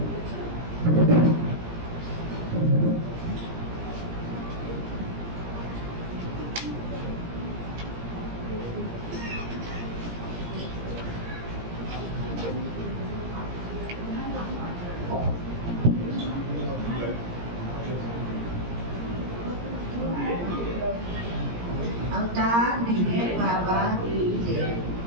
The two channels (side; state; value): left; late; 17 ms